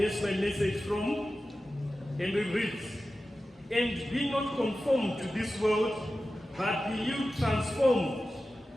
my message from, and it reads, and be not conformed to this world, but be you transformed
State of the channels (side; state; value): both; normal; correlation 0.94